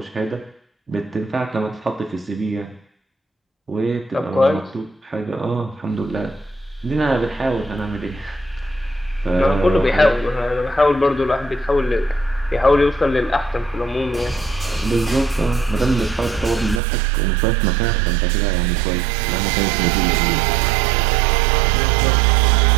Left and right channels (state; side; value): drops out; left; at 16.8 s